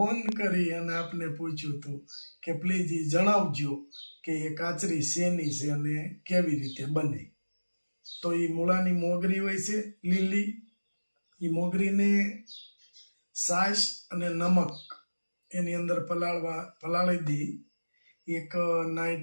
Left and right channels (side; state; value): both; inverted; correlation -1.00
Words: કરી અને આપને પૂછ્યું હતું કે પ્લીઝ એ જણાવજો કે એ કાચરી શેની છે અને કેવી રીતે બને. તો એ મૂળાની મોગરી હોય છે લીલી. એ મોગરીને છાશ અને નમક એની અંદર પલાળી દઈ એક